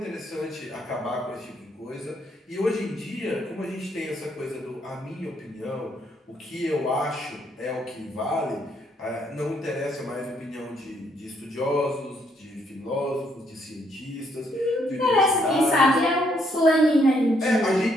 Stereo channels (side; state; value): both; normal; correlation 0.72